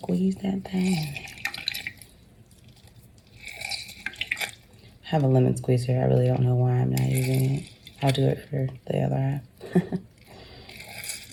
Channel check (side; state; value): both; identical; correlation 1.00